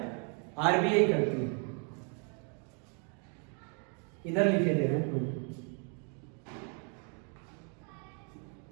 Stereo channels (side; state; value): left; quieter; 38.6 dB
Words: आरबीआई करती है। इधर लिखे दे रहे हैं,